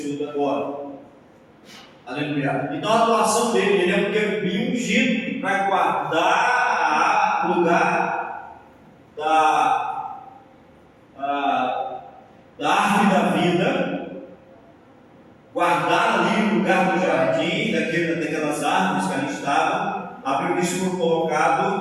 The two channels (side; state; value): both; identical; correlation 1.00